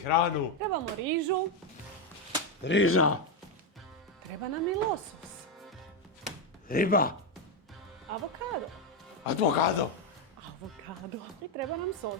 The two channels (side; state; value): both; normal; correlation 0.06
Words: Trebamo rižu, Riža, treba nam i losos, riba, avokado, avokado, i treba nam